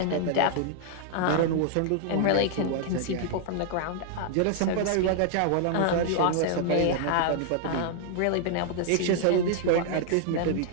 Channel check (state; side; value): different; both; correlation -0.01